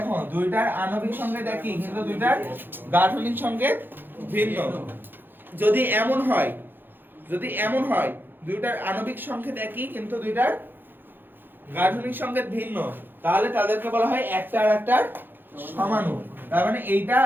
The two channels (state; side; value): late; left; 0.096 ms